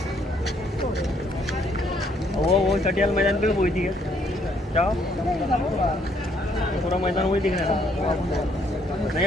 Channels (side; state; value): both; normal; correlation 0.68